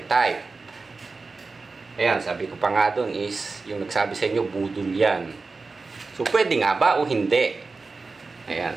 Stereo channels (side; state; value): left; quieter; 4.0 dB